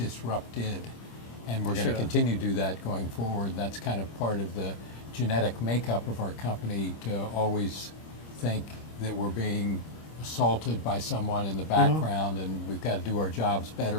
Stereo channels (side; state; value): right; late; 26 ms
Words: And we're going to continue to do that going forward. That's kind of part of the genetic makeup of our company to always think that we're being assaulted by someone in the background and we've got to do our jobs